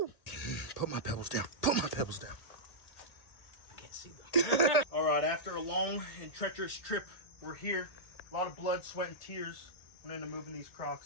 Put my pebbles down. I can't see them. All right, after a long and treacherous trip, we're here. A lot of blood, sweat, and tears went into moving these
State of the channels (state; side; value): late; right; 1.8 ms